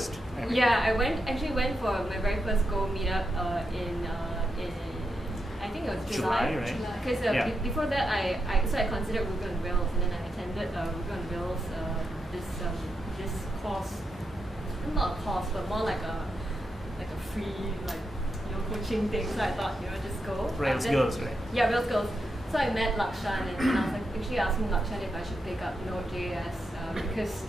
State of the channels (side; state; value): both; normal; correlation 0.85